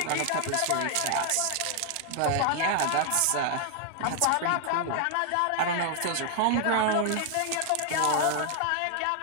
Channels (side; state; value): both; different; correlation 0.00